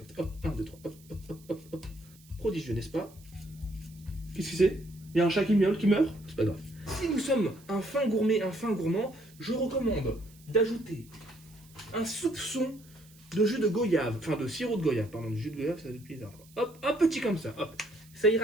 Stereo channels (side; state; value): right; noise; hiss, 26 dB below the sound